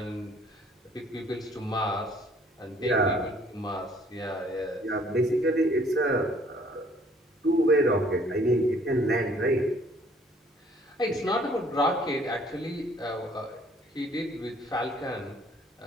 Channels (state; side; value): normal; both; correlation 0.59